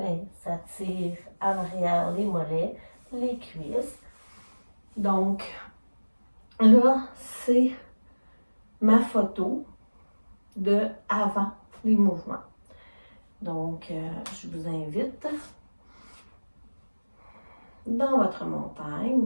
ça tire en arrière les mollets, les cuisses. Donc, là, c'est ma photo de avant les mouvements. Donc, je vous invite dans votre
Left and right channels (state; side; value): inverted; both; correlation -1.00